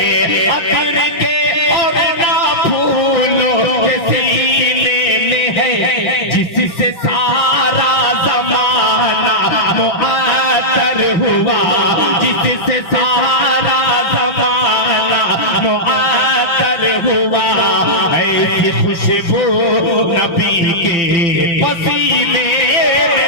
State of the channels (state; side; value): late; right; 5.9 ms